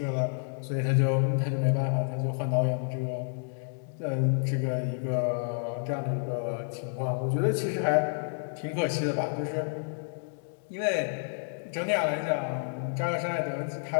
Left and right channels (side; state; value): right; silent; digital silence